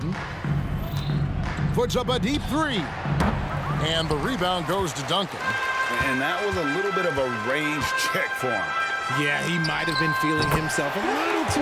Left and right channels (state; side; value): identical; both; correlation 1.00